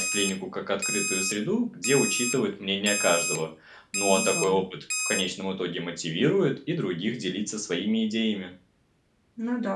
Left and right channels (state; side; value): identical; both; correlation 1.00